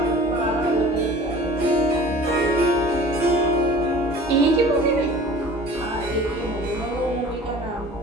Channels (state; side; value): normal; both; correlation 0.44